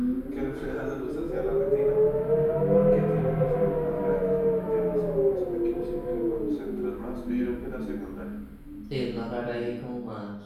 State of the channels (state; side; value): identical; both; correlation 1.00